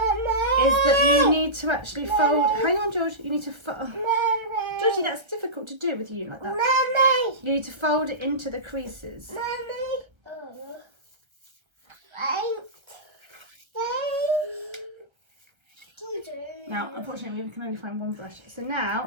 that you need to actually fold. Hang on, George. You need to fold. Georgie, that's difficult to do with you like that. You need to fold it into the creases. Now, unfortunately, we can only find one brush. So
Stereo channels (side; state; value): left; late; 1.3 ms